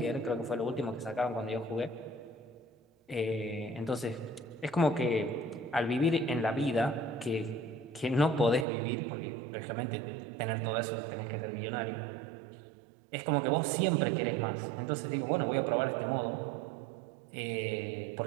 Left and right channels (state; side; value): drops out; left; at 8.7 s